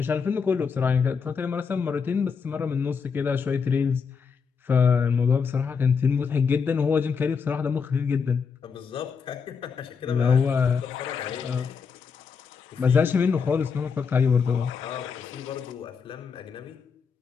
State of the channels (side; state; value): right; quieter; 5.9 dB